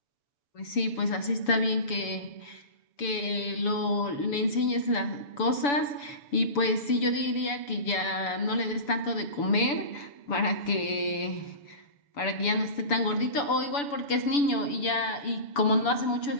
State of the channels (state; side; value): late; right; 7.0 ms